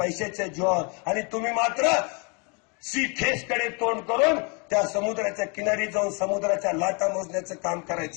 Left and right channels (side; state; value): right; quieter; 33.4 dB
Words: जीवावर. आणि तुम्ही मात्र सी फेसकडे तोंड करून त्या समुद्राच्या किनारी जाऊन समुद्राच्या लाटा मोजण्याचं काम